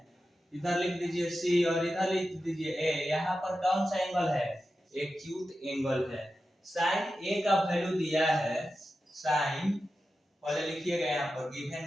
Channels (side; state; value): both; normal; correlation 0.91